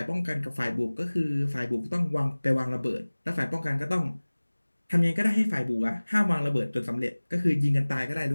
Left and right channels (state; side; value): inverted; both; correlation -1.00